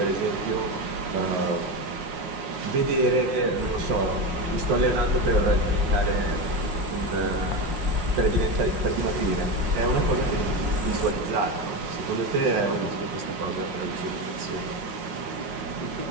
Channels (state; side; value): late; left; 5.5 ms